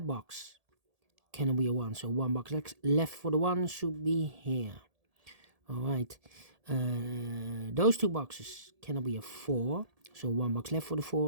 box cannot be a 1. So 1 box left for the 1 should be here. Alright. Those 2 boxes cannot be a 4. So 1 box left for the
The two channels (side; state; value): left; late; 1.7 ms